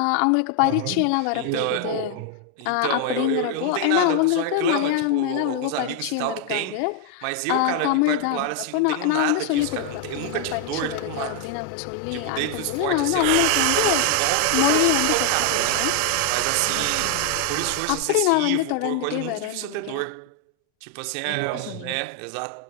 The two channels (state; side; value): different; both; correlation 0.00